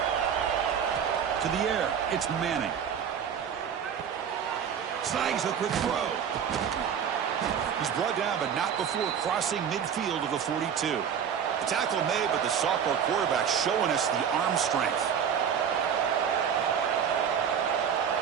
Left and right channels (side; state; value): left; quieter; 7.9 dB